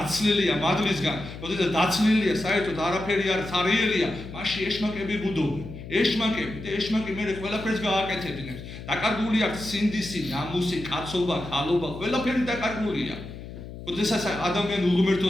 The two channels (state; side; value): noise; left; hum, 12 dB below the sound